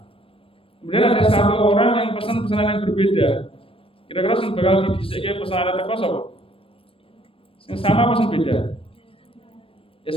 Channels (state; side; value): late; right; 0.26 ms